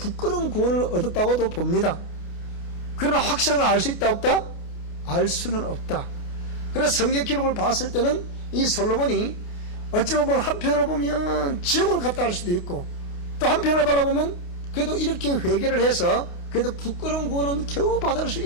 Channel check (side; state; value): right; late; 28 ms